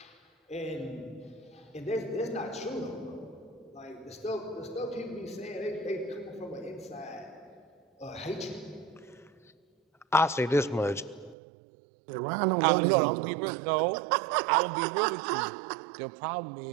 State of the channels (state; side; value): drops out; left; at 11.4 s